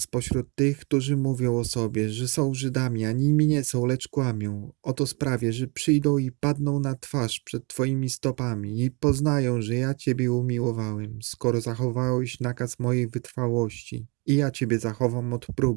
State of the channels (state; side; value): quieter; left; 30.9 dB